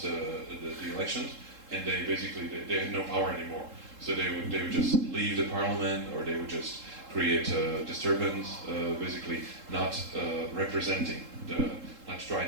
the elections, and they basically they had no power anymore. So they would just leave the parliament, or they would just create a disturbance, basically not representing not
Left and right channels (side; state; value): left; late; 3.7 ms